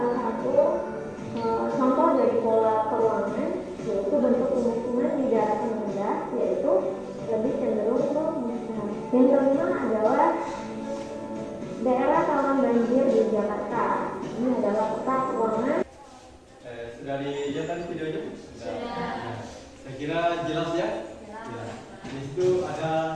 satu contoh dari pola peruangan, yaitu bentuk pemukiman di daratan rendah, yaitu lebih cenderung ke musnah. Yang kelima adalah daerah rawan banjir di Jakarta. Ini adalah peta peruangan. Sudah dilihat tadi videonya? Sudah. Saya kira jelas ya? Jelas. Di situ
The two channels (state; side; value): identical; both; correlation 1.00